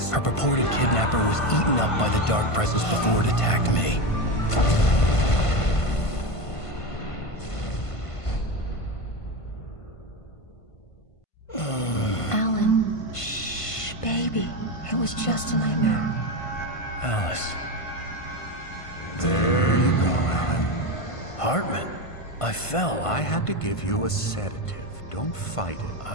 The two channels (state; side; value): late; right; 1.5 ms